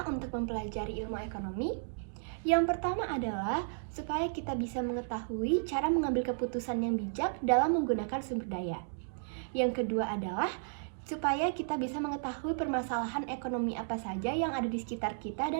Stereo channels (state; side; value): silent; left; digital silence